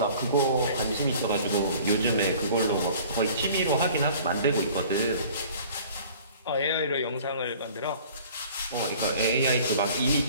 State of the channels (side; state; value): both; inverted; correlation -0.48